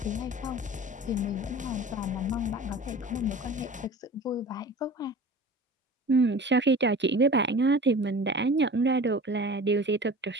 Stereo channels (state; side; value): normal; both; correlation 0.39